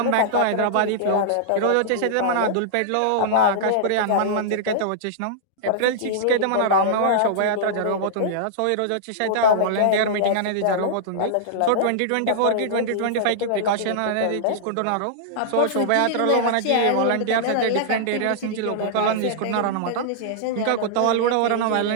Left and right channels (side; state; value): both; different; correlation -0.02